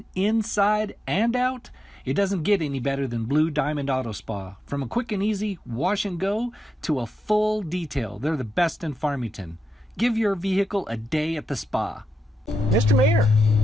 inside and out, it doesn't get any better than Blue Diamond Auto Spa. From a quick and easy wash and go to a full detail, they're the best in Farmington. Give your vehicle a day at the spa. Mr. Mayor,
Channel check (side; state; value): both; normal; correlation 0.88